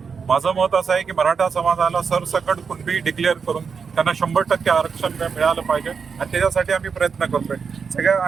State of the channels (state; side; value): quieter; left; 5.8 dB